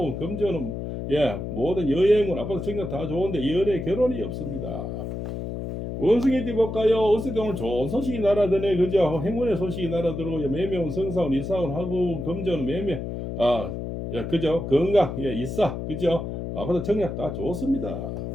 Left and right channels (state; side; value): noise; left; hum, 5 dB below the sound